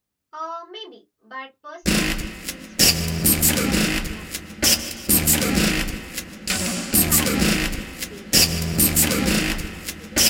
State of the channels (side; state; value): both; identical; correlation 1.00